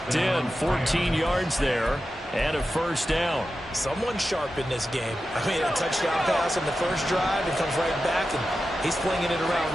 in. 14 yards there and a 1st down. Someone sharp in this game. I mean, a touchdown pass on the first drive. It comes right back, and he's flinging it around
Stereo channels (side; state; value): both; normal; correlation 0.92